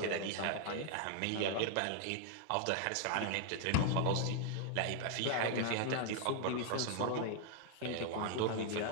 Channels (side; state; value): both; different; correlation 0.00